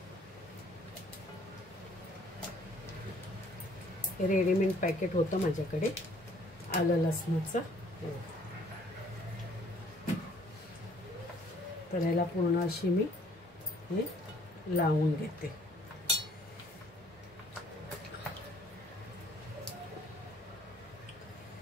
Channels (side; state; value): both; normal; correlation 0.60